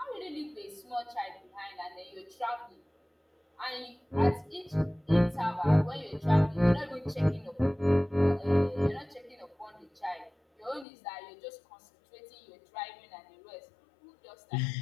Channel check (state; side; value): drops out; right; at 10.9 s